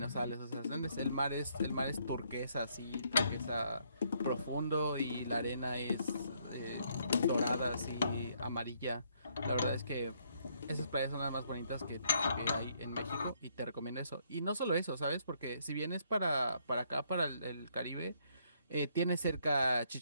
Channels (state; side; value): inverted; both; correlation -0.70